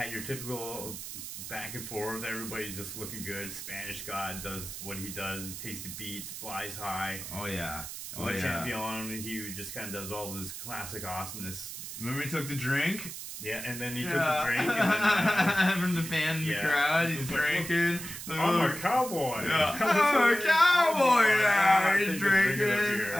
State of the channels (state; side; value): noise; right; hiss, 9 dB below the sound